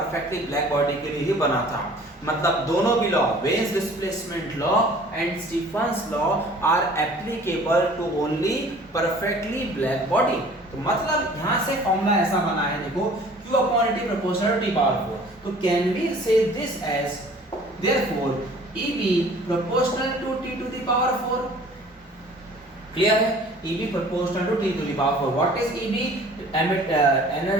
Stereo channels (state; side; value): normal; both; correlation 0.50